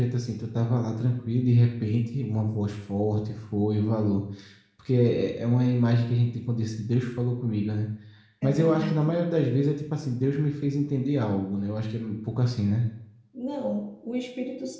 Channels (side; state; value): both; identical; correlation 1.00